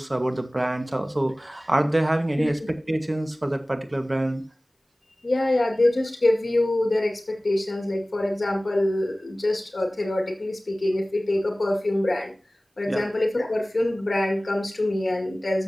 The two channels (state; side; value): normal; both; correlation 0.98